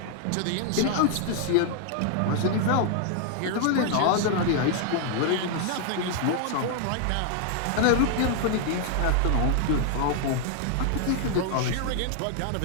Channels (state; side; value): different; both; correlation 0.00